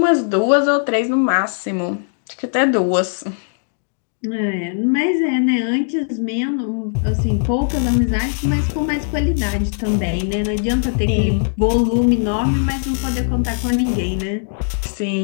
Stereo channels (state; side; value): silent; right; digital silence